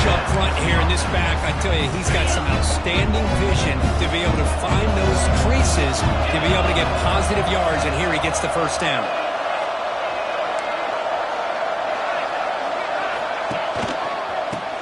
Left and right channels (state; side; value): identical; both; correlation 1.00